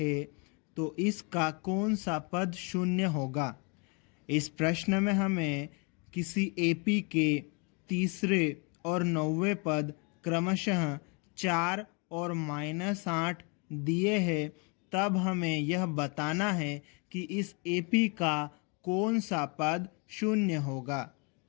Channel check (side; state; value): right; quieter; 33.2 dB